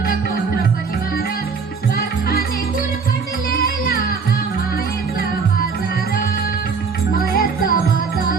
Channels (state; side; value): quieter; left; 5.3 dB